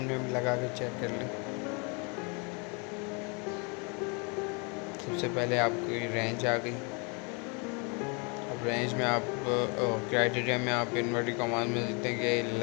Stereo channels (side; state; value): right; quieter; 33.1 dB